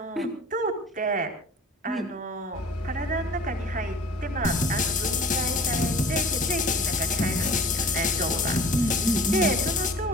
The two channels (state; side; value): normal; both; correlation 0.45